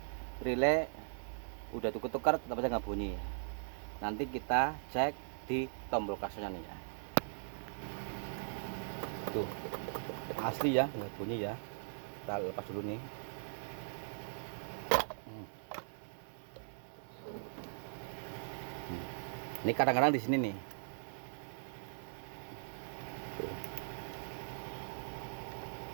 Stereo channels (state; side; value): silent; left; digital silence